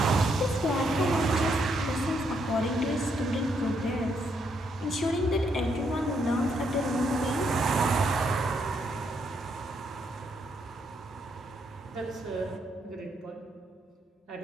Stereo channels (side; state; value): both; normal; correlation 0.75